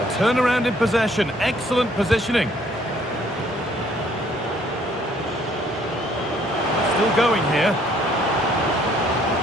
A turnaround in possession. Excellent positioning. Still going here.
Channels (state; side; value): normal; both; correlation 0.63